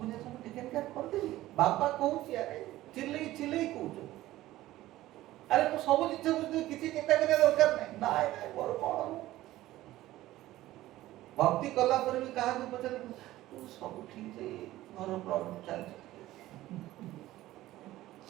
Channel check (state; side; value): quieter; left; 15.8 dB